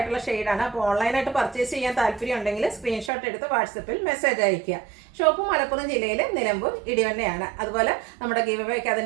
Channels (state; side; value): drops out; left; at 3.1 s